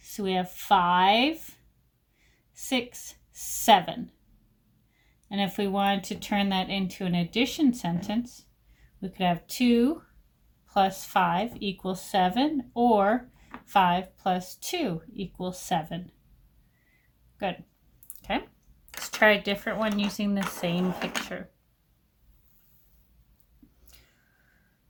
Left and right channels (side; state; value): both; identical; correlation 1.00